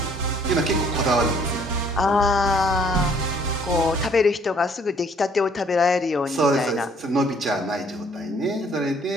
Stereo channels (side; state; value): both; normal; correlation 0.60